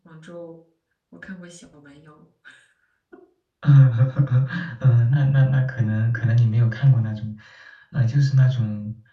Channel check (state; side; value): identical; both; correlation 1.00